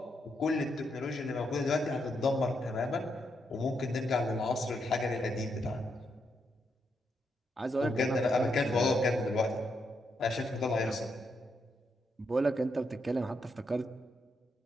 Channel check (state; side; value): normal; both; correlation 0.80